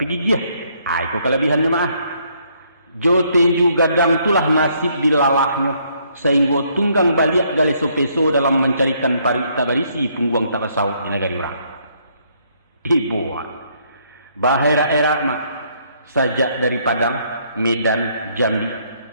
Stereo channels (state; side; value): inverted; both; correlation -0.69